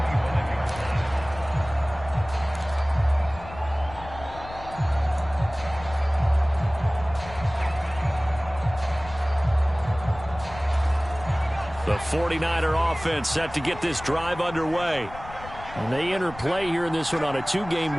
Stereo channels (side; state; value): left; noise; rumble, 15 dB below the sound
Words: The 49er offense set to get this drive underway. And they enter play here in this one on a 2-game